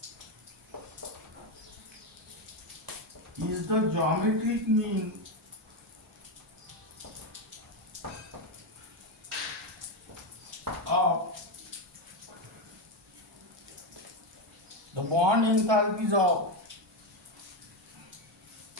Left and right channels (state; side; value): normal; both; correlation 0.10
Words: is the geometric mean of the bond enthalpies of